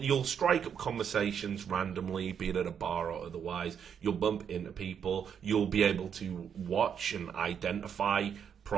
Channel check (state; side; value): quieter; left; 7.8 dB